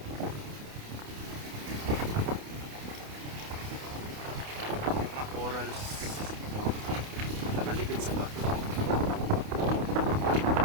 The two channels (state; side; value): late; left; 28 ms